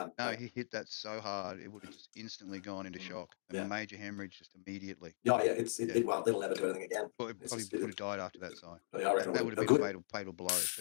no, he hit that so hard it would have just instantly gone into shock. A major hemorrhage just immediately. Well, it'll never do anything again. Well, it probably would have died after that, Si. That would have been a fatal blow.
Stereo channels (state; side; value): silent; right; digital silence